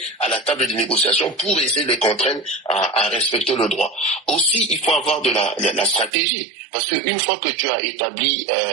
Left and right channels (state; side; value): drops out; left; at 6.1 s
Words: à la table de négociation pour essayer de les contraindre à respecter le droit. Aussi, il faut avoir de la stratégie, parce qu'une fois que tu as établi